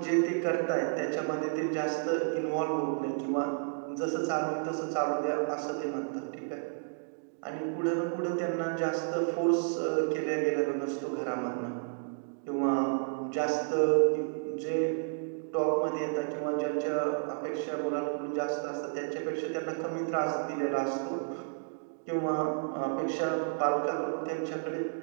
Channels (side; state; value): left; silent; digital silence